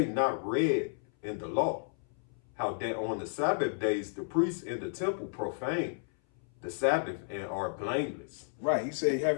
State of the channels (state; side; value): silent; right; 56 dB below the other